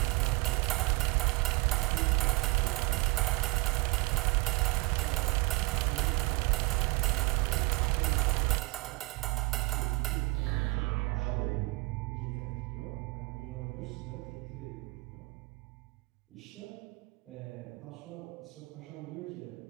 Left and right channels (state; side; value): quieter; left; 24.0 dB